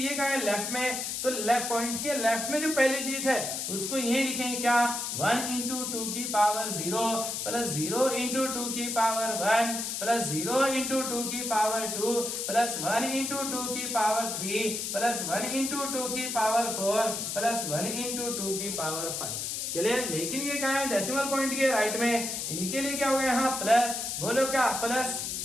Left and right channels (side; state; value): left; noise; hiss, 3 dB below the sound